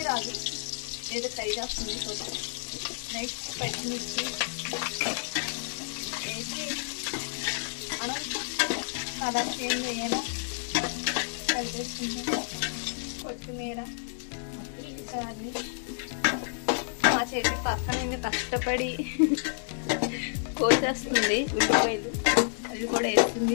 రాదు, ఏదో ట్రై చేస్తుంది చూద్దాం. నెక్స్ట్ పచ్చిమిర్చి వేసి మనం కలర్ చేంజ్ అయ్యేలా కలిపేసుకుంటాం. కొత్తిమీర ఈసారి మా చేతి పక్కన కష్టపడి కోసేస్తుంది ఉల్లిపాయలు, అవి కూడా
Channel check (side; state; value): right; silent; digital silence